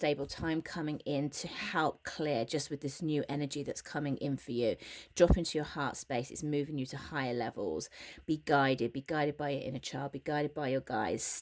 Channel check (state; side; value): identical; both; correlation 1.00